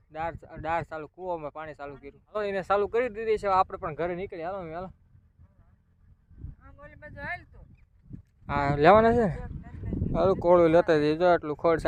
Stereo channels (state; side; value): identical; both; correlation 1.00